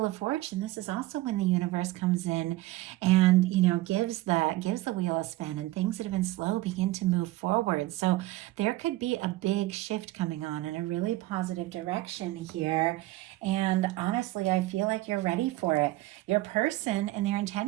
of Fortune, this is also when the universe comes in and, gives the wheel a spin, and things that have been slow begin to move forward. So there could be a big shift coming on in a really positive direction here. And honestly, I feel like you're ready for it. Your person and their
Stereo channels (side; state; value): left; quieter; 17.9 dB